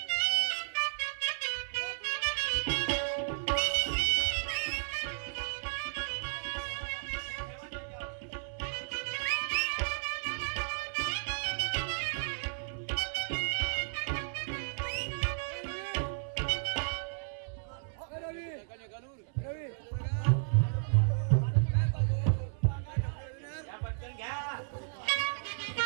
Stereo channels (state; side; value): silent; left; 55 dB below the other